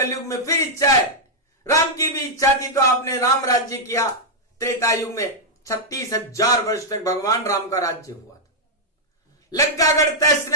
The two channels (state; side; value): normal; both; correlation -0.06